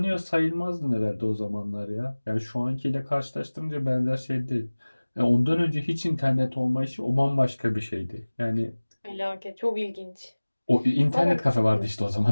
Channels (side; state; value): both; inverted; correlation -1.00